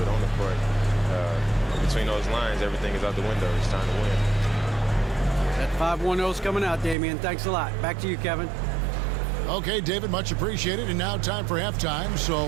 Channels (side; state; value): left; drops out; at 7.0 s